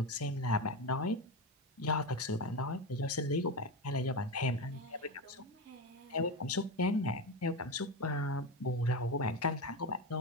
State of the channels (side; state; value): both; normal; correlation 0.17